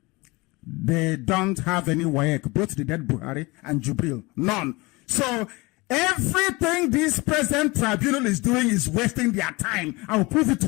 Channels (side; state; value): right; quieter; 24.0 dB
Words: They don't have any WAEC, both the dead Buhari and Jubril. None. So everything this present tribunal is doing is wasting their time. I will prove it to